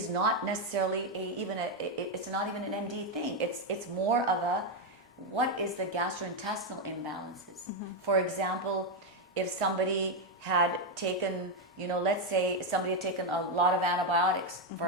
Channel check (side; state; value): both; normal; correlation 0.04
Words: not necessarily it's not even an MD thing. It's more of what is the gastrointestinal imbalances? For example, if somebody had taken, you know, let's say somebody had taken a lot of antibiotics,